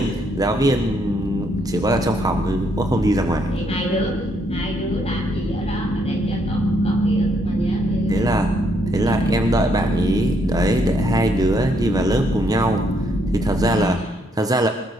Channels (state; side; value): normal; both; correlation 0.73